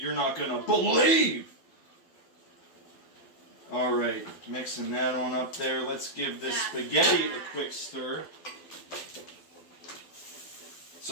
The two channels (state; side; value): late; right; 12 ms